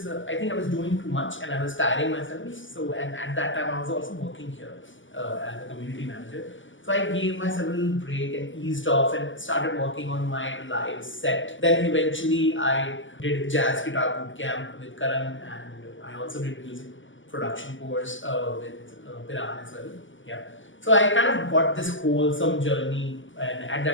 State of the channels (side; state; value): right; late; 0.56 ms